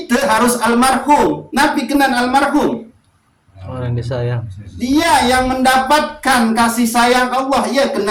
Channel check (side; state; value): both; identical; correlation 1.00